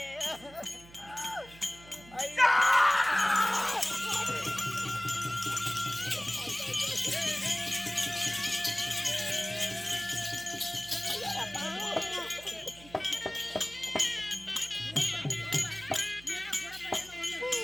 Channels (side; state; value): right; noise; hum, 21 dB below the sound